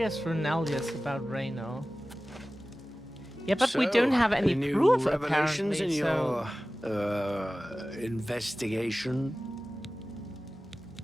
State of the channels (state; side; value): normal; both; correlation 0.97